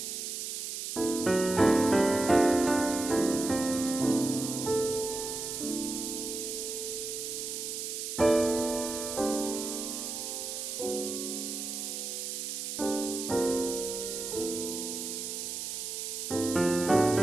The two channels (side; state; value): right; noise; hiss, 5 dB below the sound